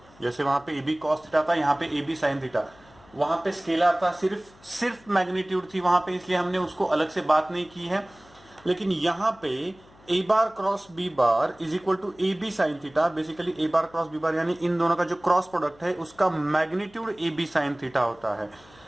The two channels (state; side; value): noise; left; hum, 26 dB below the sound